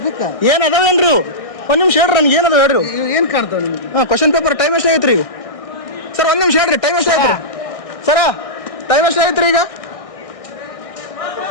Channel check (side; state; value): right; late; 1.6 ms